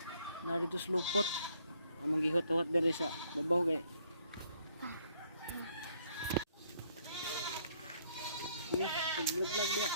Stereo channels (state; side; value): inverted; both; correlation -0.67